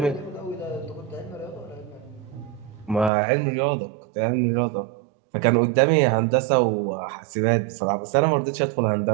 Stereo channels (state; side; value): drops out; left; at 3.1 s